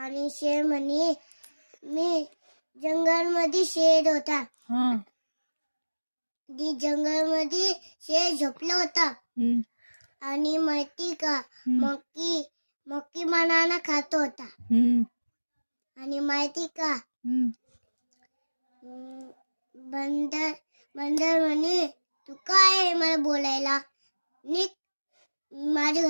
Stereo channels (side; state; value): both; inverted; correlation -1.00